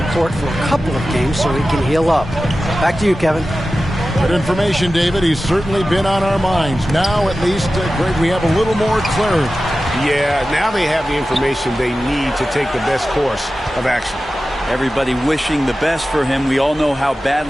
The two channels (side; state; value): both; normal; correlation 0.94